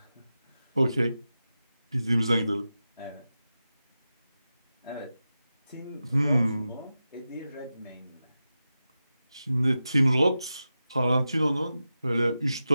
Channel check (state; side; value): inverted; both; correlation -0.92